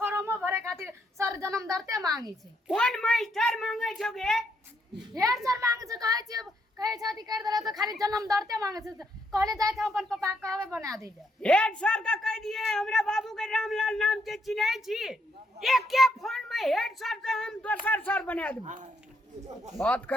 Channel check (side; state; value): both; normal; correlation 0.75